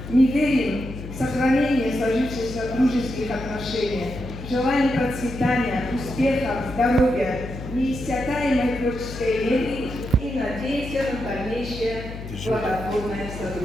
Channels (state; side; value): noise; left; hum, 10 dB below the sound